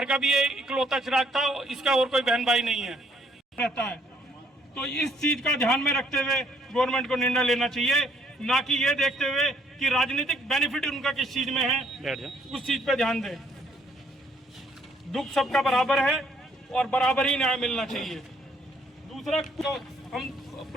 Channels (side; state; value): both; normal; correlation 0.67